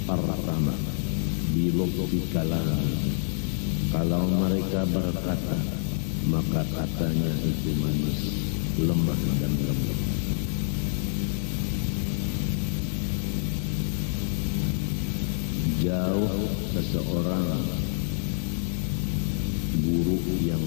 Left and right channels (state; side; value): silent; right; digital silence